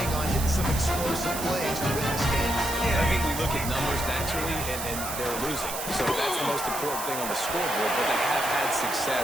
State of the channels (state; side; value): noise; right; hiss, 6 dB below the sound